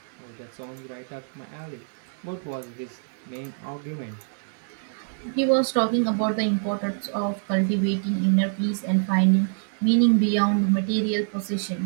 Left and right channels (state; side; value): silent; left; digital silence